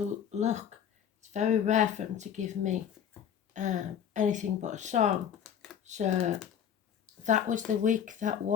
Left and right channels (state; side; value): quieter; right; 8.7 dB